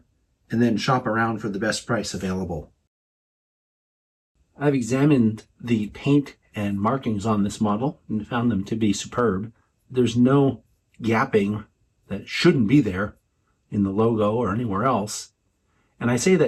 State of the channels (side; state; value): both; identical; correlation 1.00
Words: and then shop around for the best price available. I've examined the paint and markings on this model and found them to be superb. There's no gapping that shouldn't be there in the logo or anywhere else. And I say